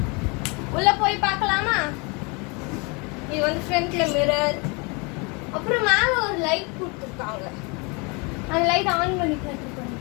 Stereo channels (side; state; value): right; quieter; 30.3 dB